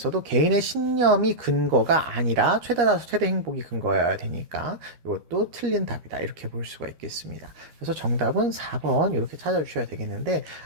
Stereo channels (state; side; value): late; left; 13 ms